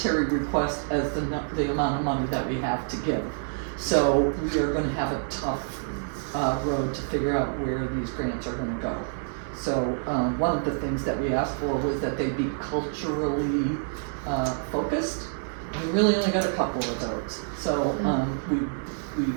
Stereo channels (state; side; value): silent; left; 59 dB below the other